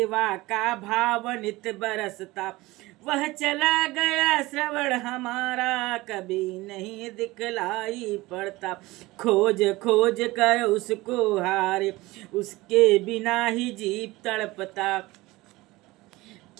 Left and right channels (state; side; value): quieter; left; 20.2 dB